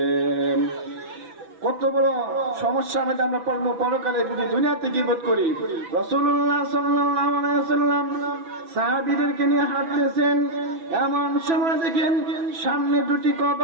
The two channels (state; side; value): late; left; 6.0 ms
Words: কত বড় সমস্যার মধ্যে আমরা পড়বো পরকালে যদি দুনিয়াতে গীবত করি। রাসূলুল্লাহ সাল্লাল্লাহু আলাইহি ওয়াসাল্লাম সাহাবীদেরকে নিয়ে হাঁটতেছেন, এমন সময় দেখেন সামনে দুটি